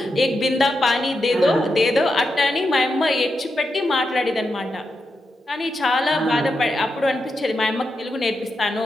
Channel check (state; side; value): normal; both; correlation 0.86